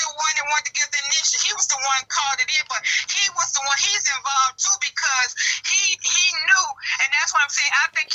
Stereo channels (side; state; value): both; identical; correlation 1.00